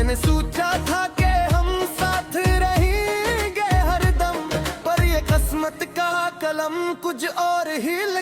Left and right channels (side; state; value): both; identical; correlation 1.00